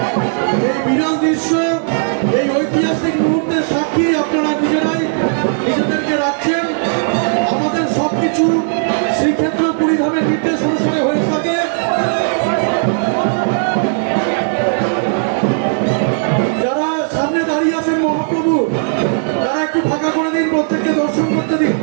এই বিরল দৃশ্য, এই ঐতিহাসিক মুহূর্তের সাক্ষী আপনারা নিজেরাই নিজেদেরকে রাখছেন। আমাদের সবকিছু শ্রীক্ষেত্র পুরীধামের নির্দেশ অনুসারে হয়ে থাকে। যারা সামনে দাঁড়িয়ে আছেন মহাপ্রভু, তারা একটু ফাঁকা করে দিন, প্রত্যেককে দর্শন করতে দিন।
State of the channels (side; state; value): left; silent; digital silence